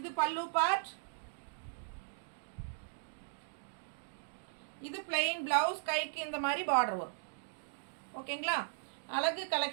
பல்லு பார்ட். இது பிளெயின் ப்ளவுஸ், கைக்கு இந்த மாதிரி பார்டர் வரும். ஓகேங்களா? அழகு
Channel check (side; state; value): left; silent; digital silence